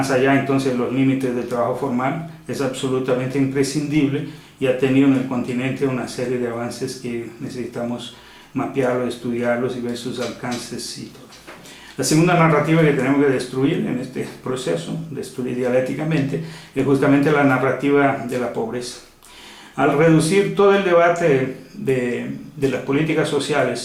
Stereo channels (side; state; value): both; identical; correlation 1.00